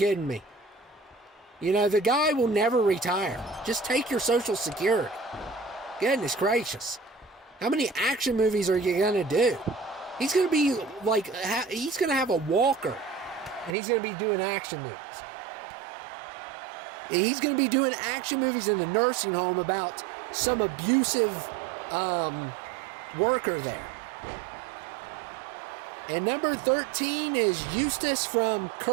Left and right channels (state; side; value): drops out; left; at 13.8 s